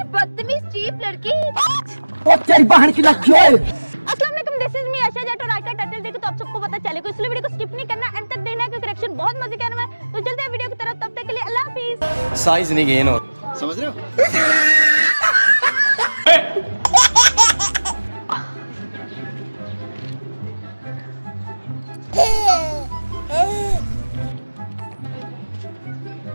बदतमीज चीप लड़की। तेरी बहन की लग गई। अस्सलाम वालेकुम, दिस इज मी आशा जट और आज का टाइटल देखो तो आप सबको पता चलेगा, इसलिए वीडियो को स्किप नहीं करना, एंड तक देखना क्योंकि करेक्शन बहुत मजे का है। तो चलते हैं वीडियो की तरफ, तब तक के लिए अल्लाह हाफिज। साइज नहीं गेन हो, समझ रहे हो?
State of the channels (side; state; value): both; inverted; correlation -1.00